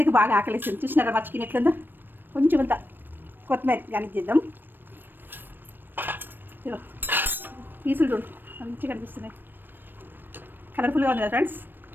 బాగా ఆకలిస్తుంది. చూసినారా మా చికెన్ ఎట్లుందో? కొంచెం అంత కొత్తిమీర గార్నిష్ చేద్దాం. ఇగో పీసులు చూడు మంచిగా కనిపిస్తున్నాయి. కలర్ఫుల్గా ఉంది కదా ఫ్రెండ్స్.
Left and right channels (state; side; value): late; left; 0.094 ms